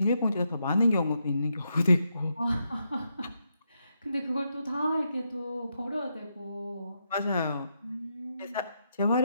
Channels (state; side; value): inverted; both; correlation -0.81